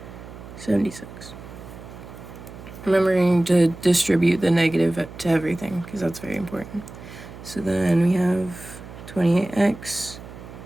76. Remembering to distribute the negative to everything, because that's very important. So then we have 28x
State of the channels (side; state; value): right; noise; hum, 15 dB below the sound